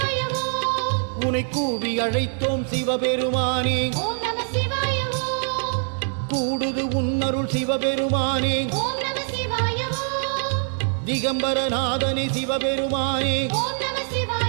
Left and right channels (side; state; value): left; silent; 63 dB below the other